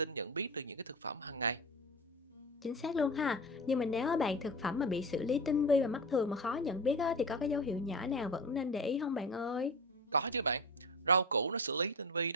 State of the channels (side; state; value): both; normal; correlation 0.26